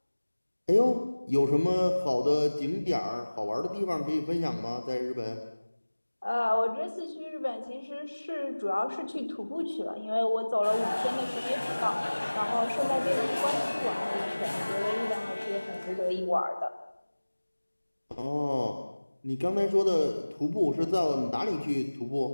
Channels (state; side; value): inverted; both; correlation -1.00